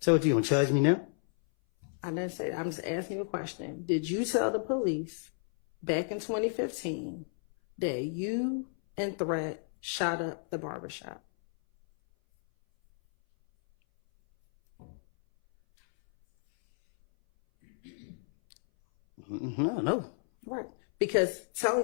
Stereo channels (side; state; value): right; silent; 57 dB below the other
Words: what, you gonna charge me now? I didn't say that. I'm just asking you a question. Did you tell the police back in 2015 that you and Threat shot up the barbershop? No. Right. Because